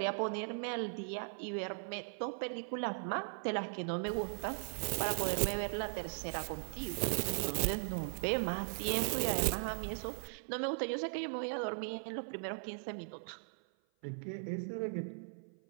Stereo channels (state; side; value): silent; left; 52 dB below the other